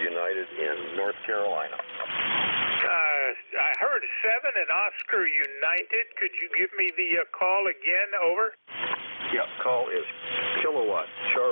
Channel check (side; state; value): both; inverted; correlation -1.00